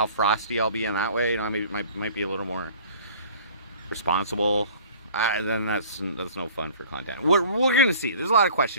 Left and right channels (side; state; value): both; inverted; correlation -0.48